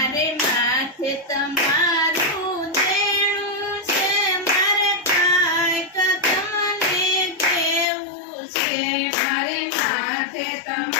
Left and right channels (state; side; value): drops out; right; at 7.9 s